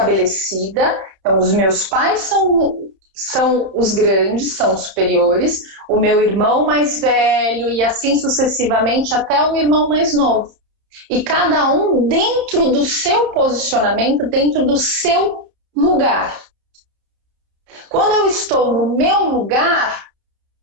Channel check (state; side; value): late; left; 31 ms